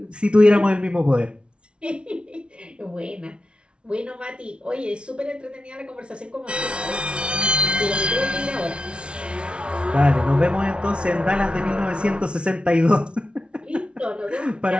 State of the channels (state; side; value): late; left; 0.058 ms